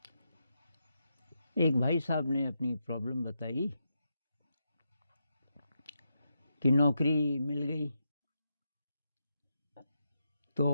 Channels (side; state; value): both; inverted; correlation -0.85